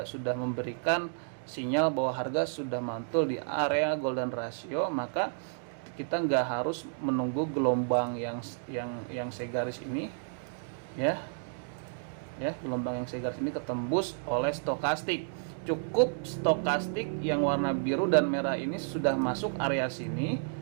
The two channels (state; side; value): silent; left; digital silence